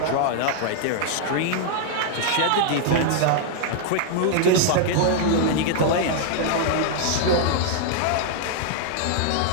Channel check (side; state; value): both; different; correlation 0.00